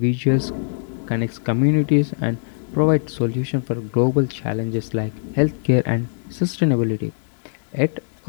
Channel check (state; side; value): silent; right; digital silence